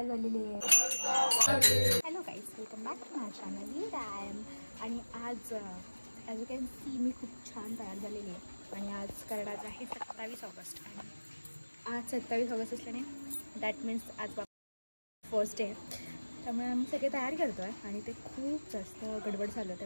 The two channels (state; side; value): inverted; both; correlation -1.00